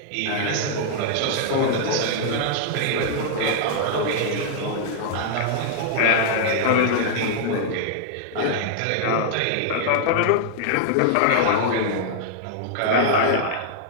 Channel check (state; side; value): different; both; correlation -0.01